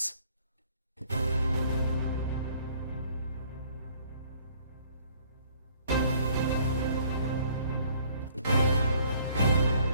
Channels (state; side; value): inverted; both; correlation -0.59